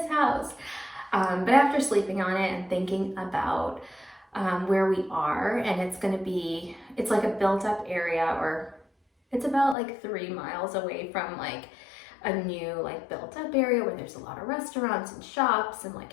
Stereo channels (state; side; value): drops out; right; at 9.8 s